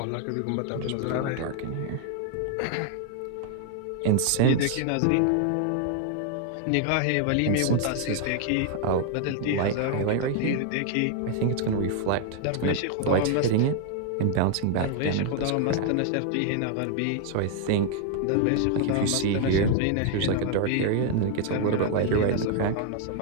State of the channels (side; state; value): both; different; correlation 0.00